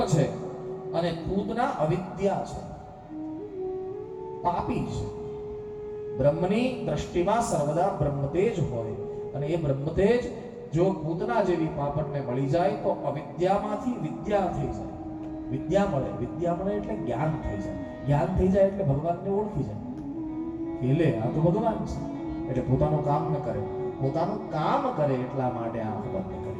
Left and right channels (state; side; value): identical; both; correlation 1.00